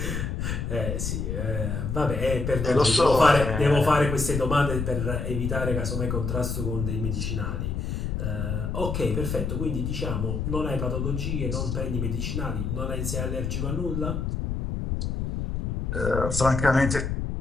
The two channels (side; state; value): left; noise; rumble, 2 dB below the sound